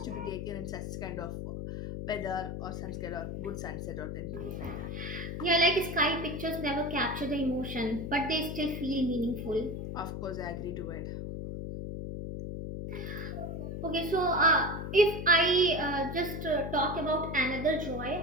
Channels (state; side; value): noise; left; hum, 5 dB below the sound